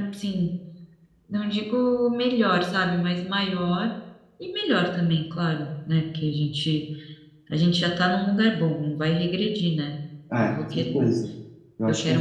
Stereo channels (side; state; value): both; identical; correlation 1.00